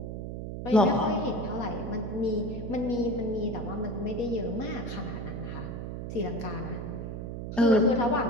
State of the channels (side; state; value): right; noise; hum, 6 dB below the sound